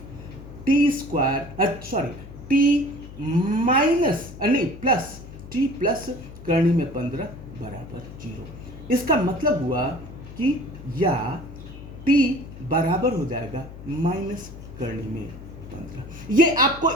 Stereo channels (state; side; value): noise; left; hum, 15 dB below the sound